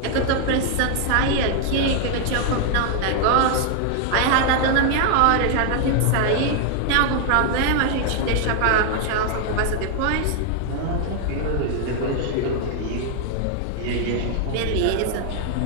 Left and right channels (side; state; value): both; different; correlation 0.00